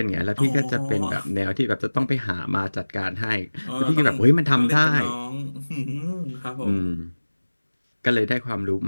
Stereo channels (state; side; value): inverted; both; correlation -1.00